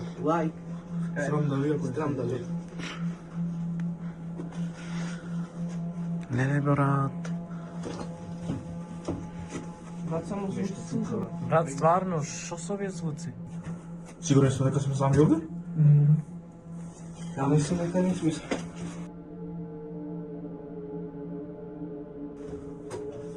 лайк. Срам да видам. Срам да видам. Не, брат. Брат, само звучи слуха. Брат, стварно, шо со овие звуци? Сигурен сте дека сме сами овде? Ја мислам дека не сме.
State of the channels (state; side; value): identical; both; correlation 1.00